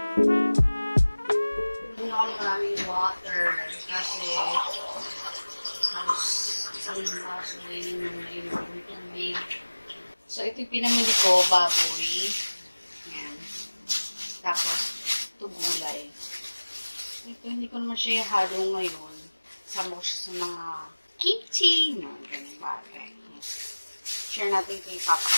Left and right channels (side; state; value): both; inverted; correlation -1.00